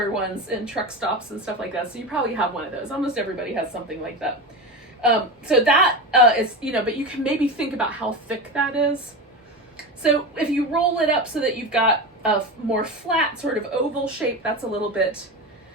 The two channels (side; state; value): both; normal; correlation 0.23